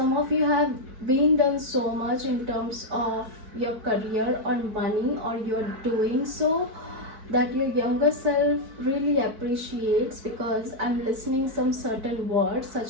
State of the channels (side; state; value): left; late; 4.6 ms